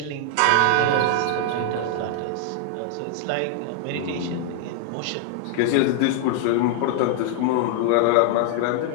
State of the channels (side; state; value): both; different; correlation 0.00